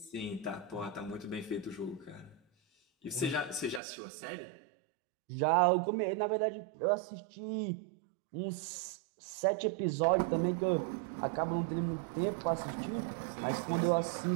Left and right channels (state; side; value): drops out; left; at 3.8 s